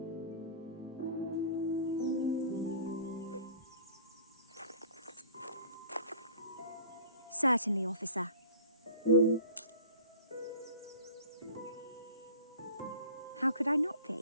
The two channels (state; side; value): inverted; both; correlation -0.43